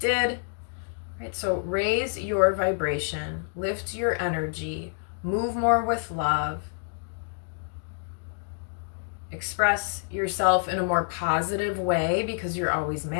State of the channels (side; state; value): right; silent; digital silence